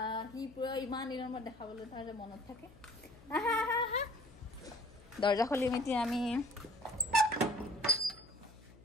সি পুৰা ইমান দিনৰ মূৰত দেখাবলৈ তাৰ যে মনত থাকে দৰ্জা খুলিম এতিয়া আমি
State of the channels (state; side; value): noise; left; hum, 22 dB below the sound